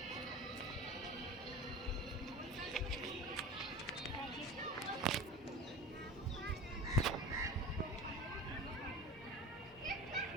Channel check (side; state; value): both; normal; correlation 0.33